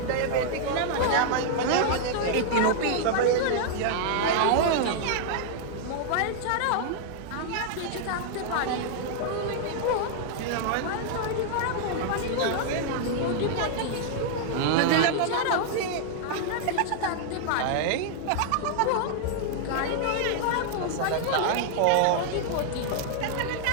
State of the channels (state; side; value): different; both; correlation -0.01